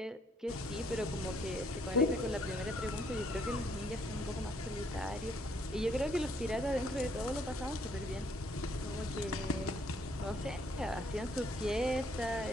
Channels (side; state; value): both; normal; correlation 0.67